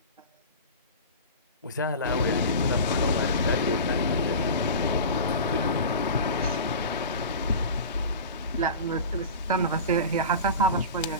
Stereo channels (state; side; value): inverted; both; correlation -0.32